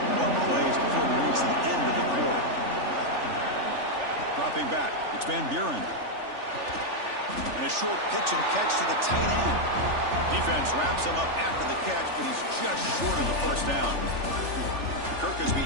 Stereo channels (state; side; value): late; left; 3.4 ms